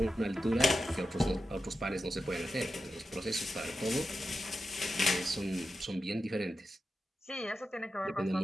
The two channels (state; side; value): normal; both; correlation 0.90